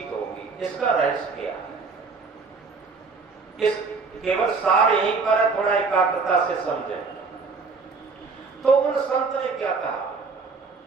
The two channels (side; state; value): left; quieter; 4.5 dB